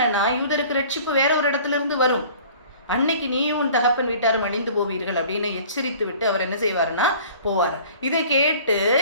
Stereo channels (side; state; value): both; inverted; correlation -0.48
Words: யூதருக்கு ரட்சிப்பு வேற ஒரு இடத்துல இருந்து வரும், அன்னைக்கு நீயும் உன் தகப்பன் வீட்டாரும் அழிந்து போவீர்கள் அப்படின்னு எச்சரித்து விட்டு அவர் என்ன செய்வாருன்னா போவார். இதை கேட்டு